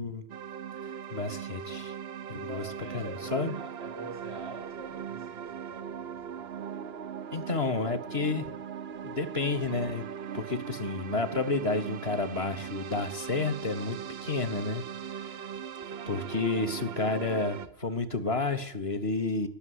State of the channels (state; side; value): late; left; 2.9 ms